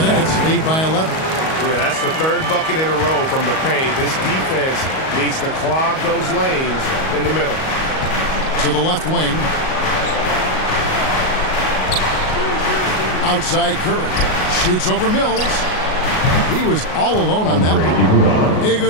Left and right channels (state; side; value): late; right; 38 ms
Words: Nets lead by 11. Yeah, that's the third bucket in a row from the paint. This defense needs to clog those lanes in the middle. To the left wing. Outside Curry. Shoots over Mills. He was all alone on that one.